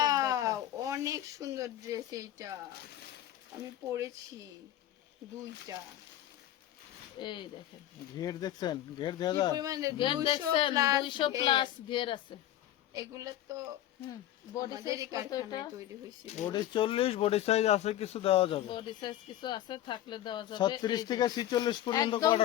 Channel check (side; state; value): right; quieter; 12.7 dB